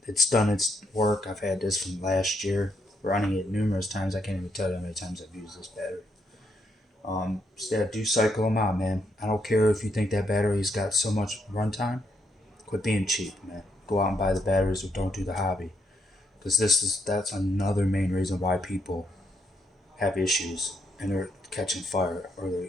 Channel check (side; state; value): both; normal; correlation 0.76